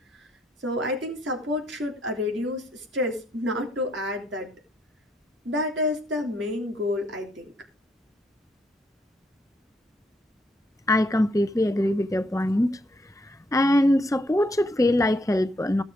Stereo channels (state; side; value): normal; both; correlation 0.73